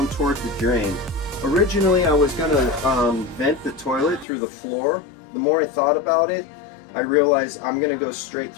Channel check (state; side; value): drops out; right; at 4.2 s